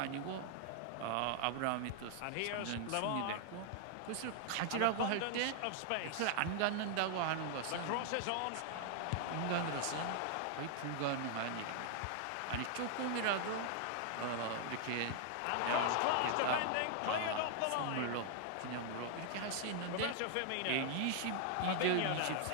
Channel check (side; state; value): both; different; correlation 0.00